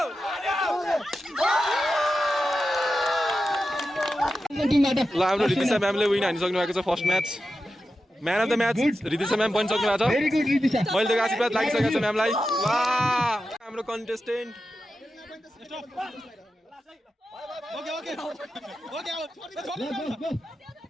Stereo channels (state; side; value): normal; both; correlation 0.91